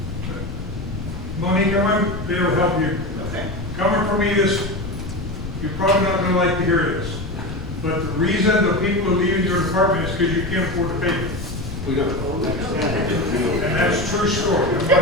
Monique, I might be able to help you. Okay. Coming from me, this, you're probably not going to like to hear this, but the reason the people are leaving your department is because you can't afford to pay them. We don't. And that's a true story. I'm not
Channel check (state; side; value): noise; left; rumble, 10 dB below the sound